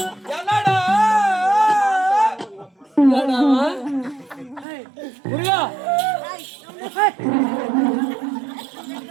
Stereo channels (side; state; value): left; drops out; at 4.7 s